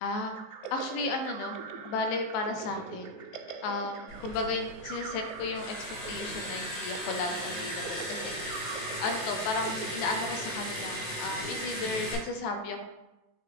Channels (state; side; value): late; right; 19 ms